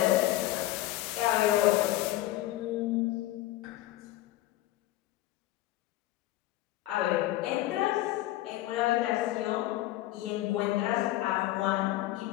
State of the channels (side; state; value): right; quieter; 16.2 dB